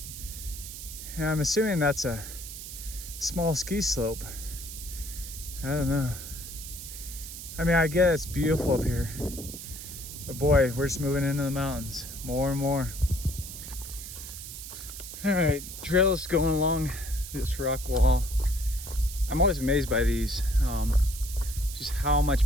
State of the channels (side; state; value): right; noise; hiss, 10 dB below the sound